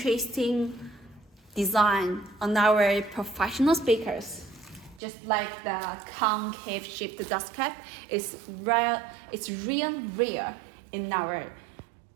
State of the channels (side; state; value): left; drops out; at 5.0 s